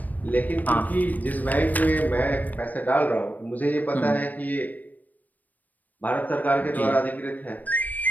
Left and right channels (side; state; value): right; late; 0.082 ms